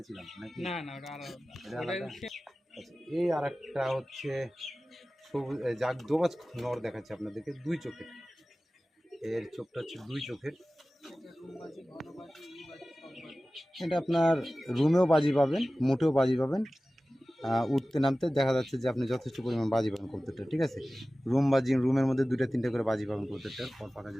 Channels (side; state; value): both; normal; correlation 0.96